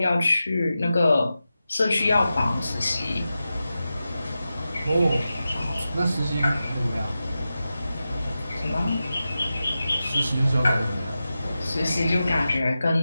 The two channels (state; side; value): inverted; both; correlation -0.92